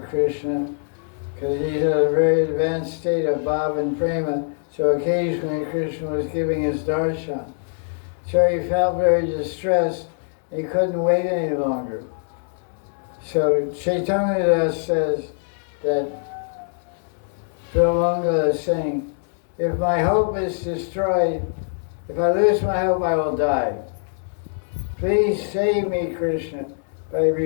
Krishna because he's at a very advanced state of bhava and prema, so occasionally Krishna was giving his darshan. So he felt very distressed, he couldn't wait any longer. So Chaitanya Das says that Brahmanga is saying, if my hope is destroyed, if I lose my hope, I will die. Please save me, Krishna, by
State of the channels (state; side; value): silent; right; 63 dB below the other